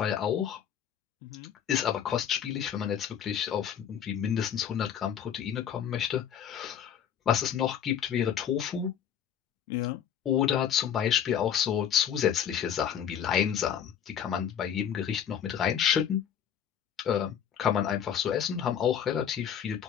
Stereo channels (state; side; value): quieter; right; 8.9 dB